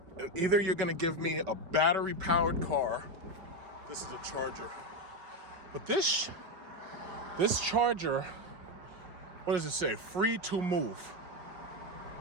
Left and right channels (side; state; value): left; late; 5.2 ms